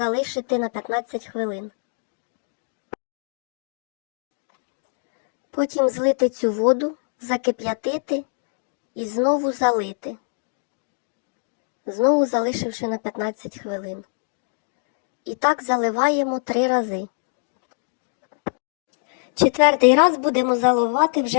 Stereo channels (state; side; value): silent; right; digital silence